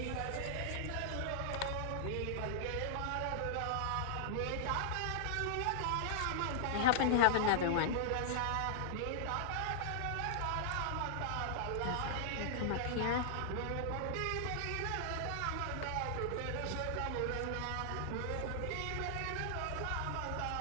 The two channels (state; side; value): different; both; correlation -0.01